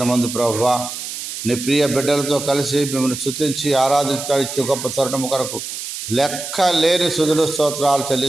ప్రభువా నీ ప్రియ బిడ్డలతో కలిసి మిమ్మల్ని స్తుతించి ఆరాధించడానికి గొప్ప తరుణము కొరకు లెక్క లేని స్తుతులు స్తోత్రాలు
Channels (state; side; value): noise; right; hiss, 8 dB below the sound